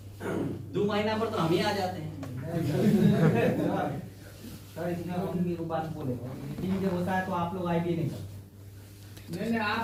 2 महीना पर तो हम ही आ जाते हैं। सर इसमें हम एक बात बोले, मीटिंग जब होता है तो आप लोग आईडी नहीं करते। नहीं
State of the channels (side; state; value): both; identical; correlation 1.00